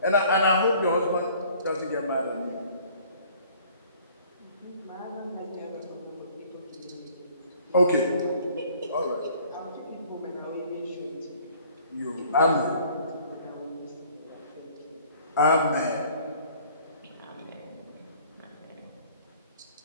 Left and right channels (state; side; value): inverted; both; correlation -0.54